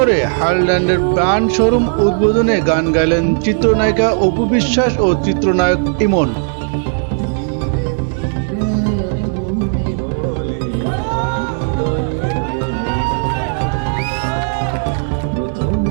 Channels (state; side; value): silent; left; 69 dB below the other